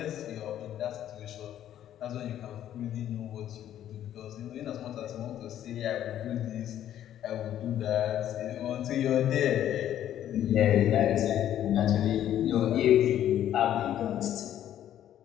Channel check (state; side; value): quieter; right; 11.3 dB